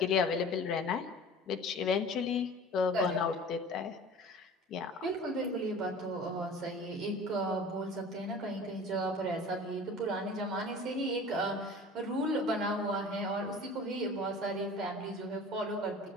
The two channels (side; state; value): both; normal; correlation 0.41